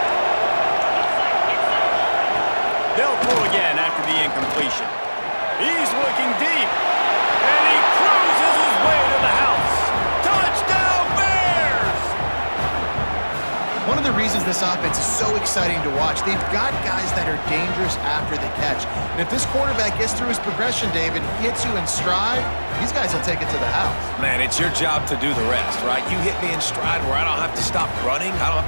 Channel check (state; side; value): inverted; both; correlation -1.00